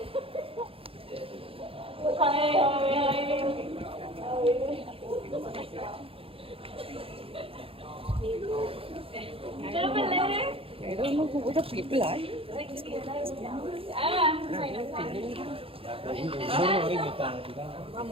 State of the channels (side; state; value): left; late; 0.27 ms